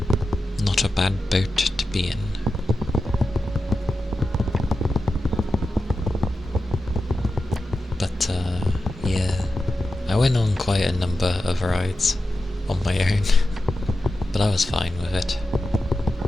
Not a bad boat to be in. But yeah, I went on quite a number of rides on my own, but I was fine with it.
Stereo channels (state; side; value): normal; both; correlation 0.91